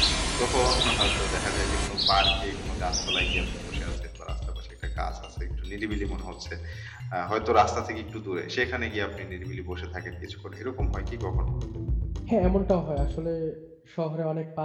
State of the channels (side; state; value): both; identical; correlation 1.00